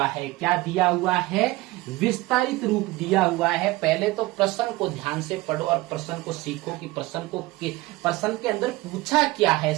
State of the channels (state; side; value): quieter; left; 20.0 dB